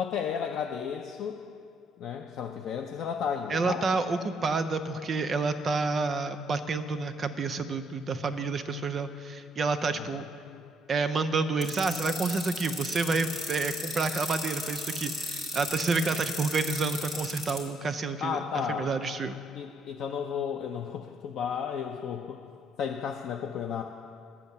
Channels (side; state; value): both; normal; correlation 0.70